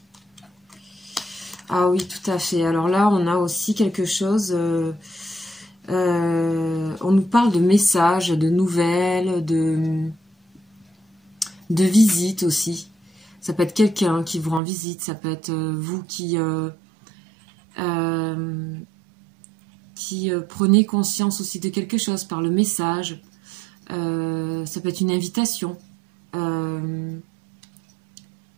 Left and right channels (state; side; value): drops out; left; at 14.6 s